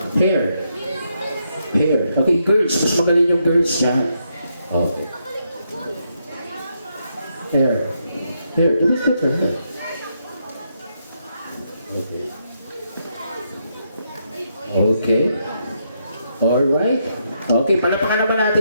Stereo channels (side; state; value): both; inverted; correlation -0.79